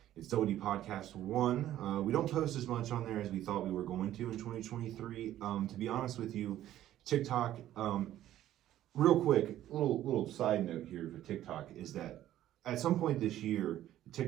It's WD Podcast 1. We don't post as much on there as we thought we were going to in 2023. To be honest with you, TikTok, real quick, little side note here for TikTok is that at some point this year, the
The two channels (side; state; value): left; quieter; 12.9 dB